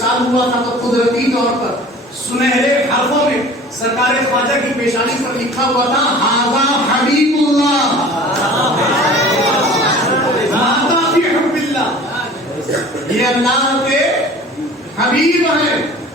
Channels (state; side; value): normal; both; correlation 0.44